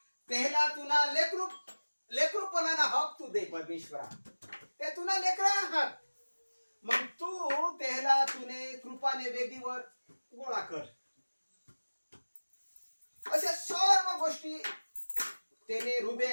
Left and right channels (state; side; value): inverted; both; correlation -1.00